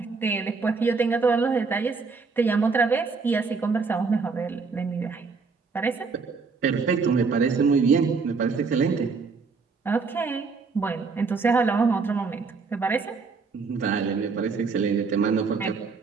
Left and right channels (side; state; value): left; quieter; 4.7 dB